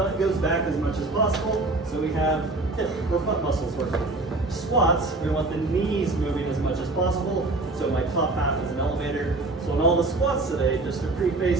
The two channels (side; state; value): left; quieter; 3.1 dB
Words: goes back as much as possible, so we have hip or butt muscles working. Squats, we want the knees moving as much as possible, so my top half is an elevator. So in all the squats today, just to